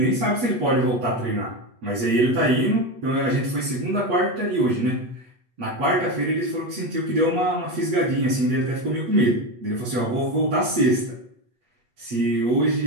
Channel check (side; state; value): left; late; 8.2 ms